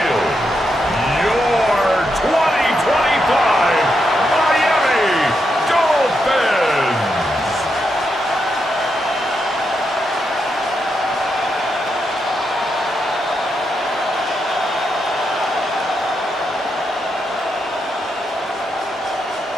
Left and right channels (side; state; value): both; normal; correlation 0.83